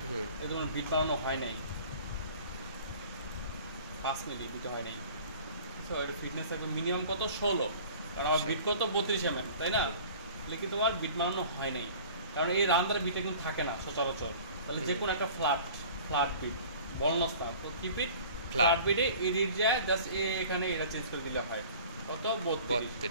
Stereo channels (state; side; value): inverted; both; correlation -0.45